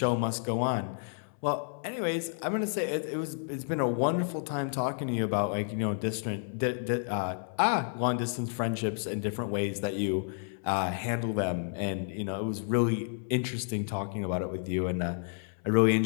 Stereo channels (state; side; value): silent; right; 57 dB below the other